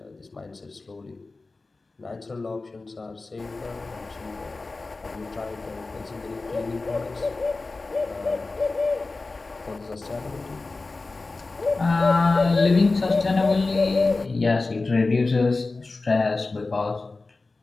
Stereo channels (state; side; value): quieter; right; 3.5 dB